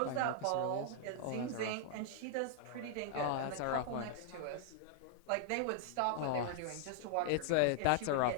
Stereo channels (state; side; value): different; both; correlation -0.01